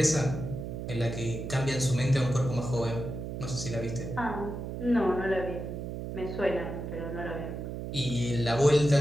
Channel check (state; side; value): noise; right; hum, 6 dB below the sound